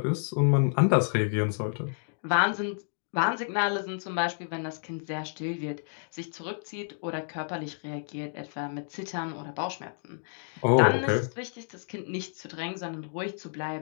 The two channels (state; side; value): silent; right; digital silence